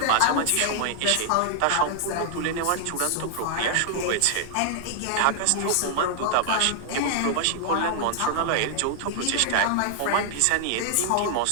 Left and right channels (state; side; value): different; both; correlation 0.00